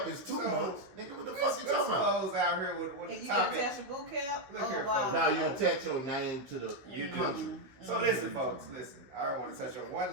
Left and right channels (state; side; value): late; left; 15 ms